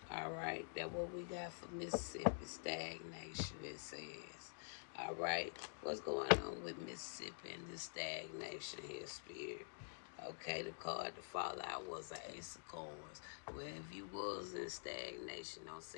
All right, that's what we got for Mississippi. Stagnation, it says. All right, what's going on with Mississippi and this stagnation here, Spirit? Okay, the card to fall out was an Ace of Coins. Well, if you was in stagnation, don't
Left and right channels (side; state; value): right; silent; digital silence